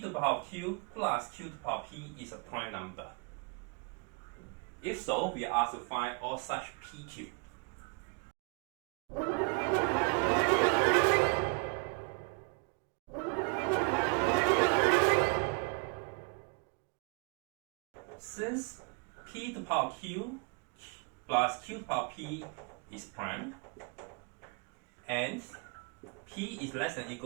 the power of Q plus Q to the power of P is a prime number. If so, we are asked to find all such PQ. Since P to the power of Q plus Q to the power of P is prime, and P is less than or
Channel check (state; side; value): quieter; left; 32.4 dB